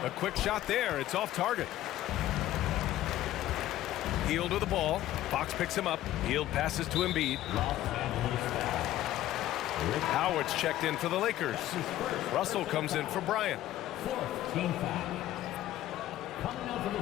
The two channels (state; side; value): quieter; right; 14.0 dB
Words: A quick shot there. It's off target. Hield with the ball. Fox picks him up. Hield passes to Embiid. Howard's checked in for the Lakers. Russell comes in for Bryant. Fourth team foul. Coming out to the